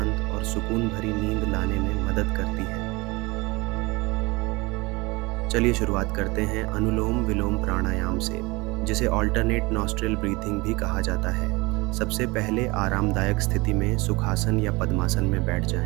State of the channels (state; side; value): quieter; left; 24.2 dB